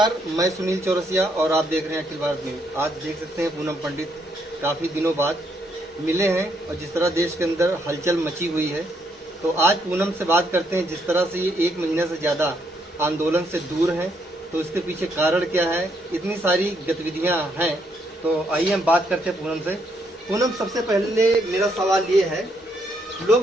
मैं सुनील चौरसिया और आप देख रहे हैं अखिल भारत न्यूज। आज देख सकते हैं पूनम पंडित काफ़ी दिनों बाद मिले हैं और जिस तरह देश के अंदर हलचल मची हुई है, तो आज पूनम से बात करते हैं। जिस तरह से ये 1 महीने से ज़्यादा आंदोलन से दूर हैं, तो इसके पीछे कारण क्या है, इतनी सारी गतिविधियां हैं, तो आइए हम बात करते हैं पूनम से। पूनम, सबसे पहले मेरा सवाल ये है,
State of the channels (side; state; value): both; normal; correlation 0.74